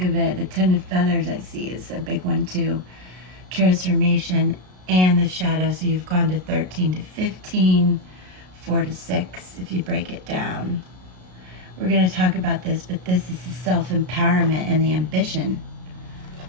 of it, the 10 of feathers I see is a big one too. Transformation and the shadow, so you've gone to 13 to 15, 4 to 6, if you break it down. We're going to talk about this, but this is the self-empowerment and the ambition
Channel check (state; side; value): late; left; 33 ms